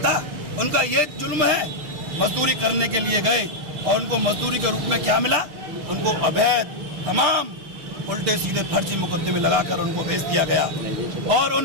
उनका ये जुल्म है? मजदूरी करने के लिए गए और उनको मजदूरी के रूप में क्या मिला? उनको अवैध तमाम उल्टे सीधे फर्जी मुकदमे लगाकर उनको भेज दिया गया। और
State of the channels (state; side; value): late; left; 6.6 ms